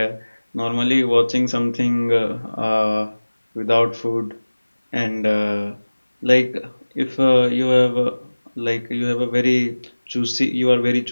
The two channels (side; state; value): both; inverted; correlation -1.00